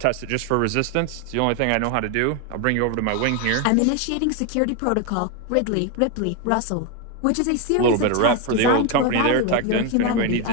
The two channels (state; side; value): different; both; correlation 0.02